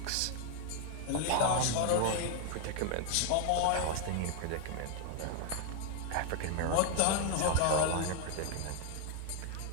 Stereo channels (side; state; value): both; different; correlation 0.00